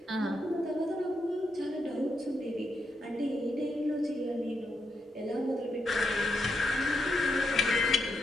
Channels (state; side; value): normal; both; correlation 0.82